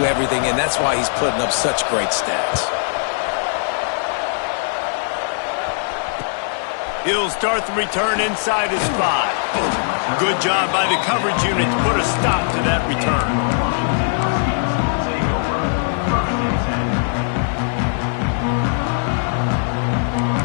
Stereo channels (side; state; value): right; silent; digital silence